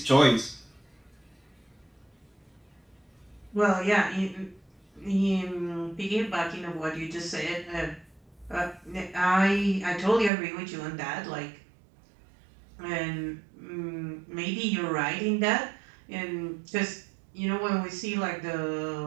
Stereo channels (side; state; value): left; drops out; at 10.3 s